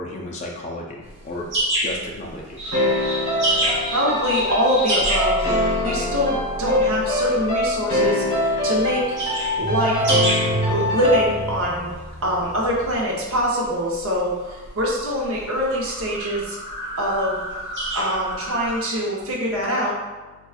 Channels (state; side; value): noise; left; hum, 30 dB below the sound